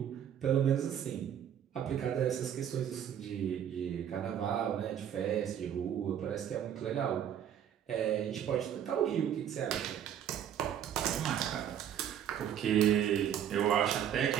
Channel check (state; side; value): quieter; left; 9.6 dB